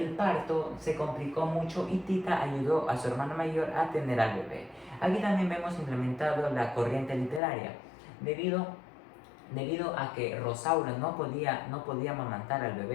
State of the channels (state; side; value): drops out; right; at 7.4 s